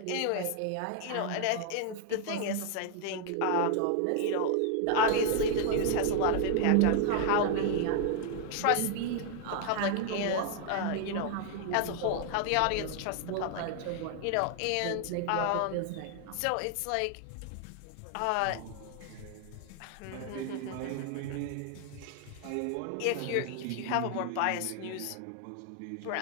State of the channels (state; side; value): different; both; correlation 0.00